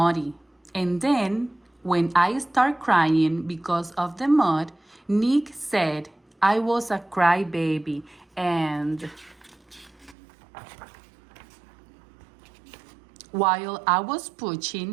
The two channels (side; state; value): left; drops out; at 10.2 s